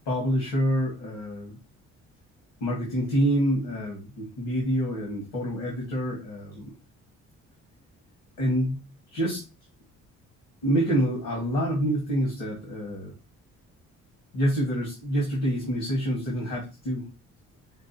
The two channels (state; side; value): normal; both; correlation 0.60